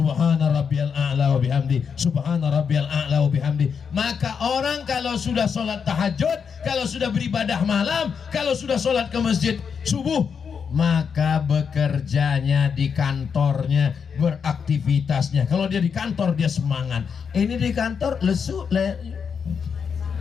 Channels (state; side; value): quieter; right; 6.5 dB